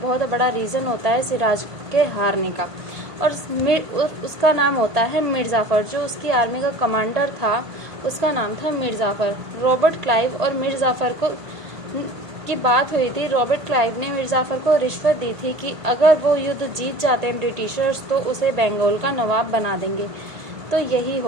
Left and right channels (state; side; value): late; left; 1.5 ms